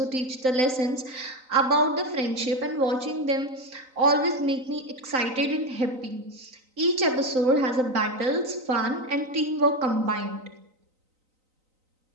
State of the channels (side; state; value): left; late; 3.9 ms